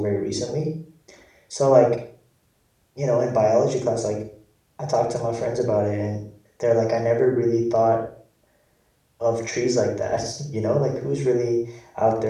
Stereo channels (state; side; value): identical; both; correlation 1.00